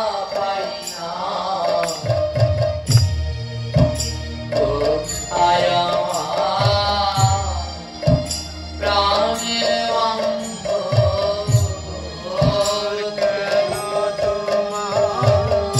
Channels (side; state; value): both; identical; correlation 1.00